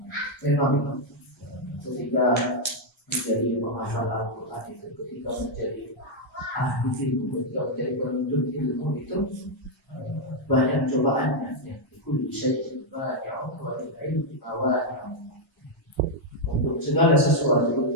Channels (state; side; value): normal; both; correlation -0.01